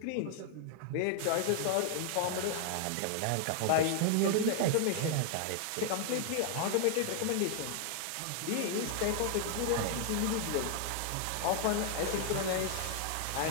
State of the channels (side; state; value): both; different; correlation 0.00